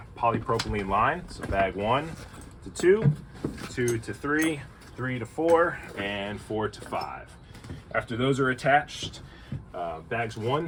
polypropylene line. So bag 1 to 2, 2 to 3, 3 to 4, and 4 to 5. After those are attached, bags 1,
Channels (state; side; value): identical; both; correlation 1.00